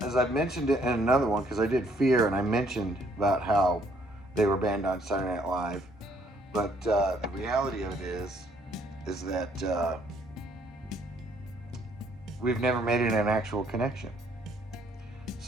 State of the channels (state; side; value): normal; both; correlation 0.66